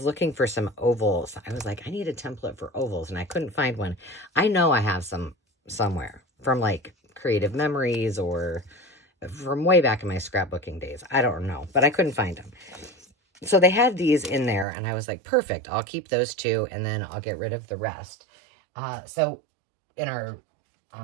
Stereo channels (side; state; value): left; drops out; at 14.7 s